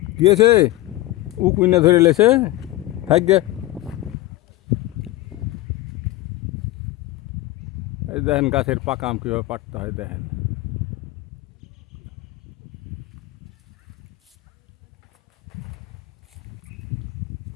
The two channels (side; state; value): right; quieter; 17.2 dB